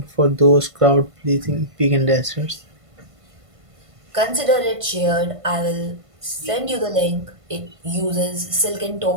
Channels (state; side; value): late; left; 1.5 ms